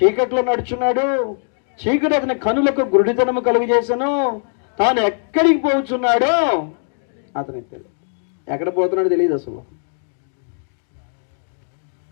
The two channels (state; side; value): silent; right; digital silence